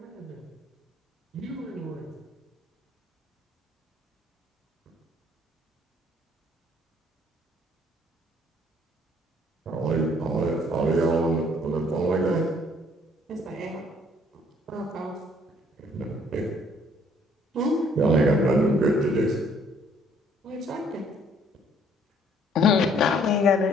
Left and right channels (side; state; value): both; normal; correlation 0.62